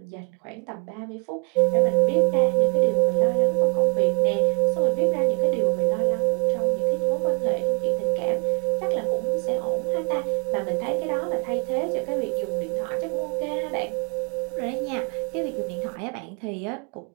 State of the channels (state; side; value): quieter; left; 34.5 dB